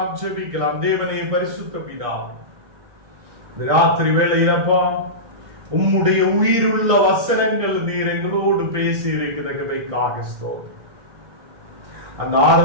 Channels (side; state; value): left; late; 1.6 ms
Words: ஜெபிக்கலாம். தேவனே பரிசுத்த பிதாவே, இந்த ராத்திரி வேளையிலப்பா உம்முடைய உயிருள்ள வசனங்கள் நீர் எங்களோடு பேசி இருக்கிறதுக்காக ஸ்தோத்திரம். அந்த